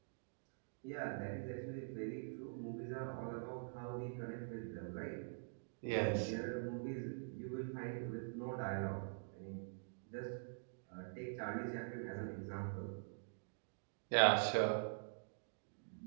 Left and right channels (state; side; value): silent; left; digital silence